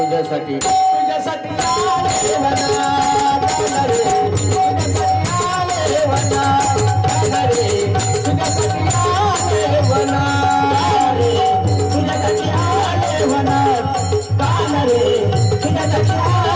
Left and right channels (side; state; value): both; identical; correlation 1.00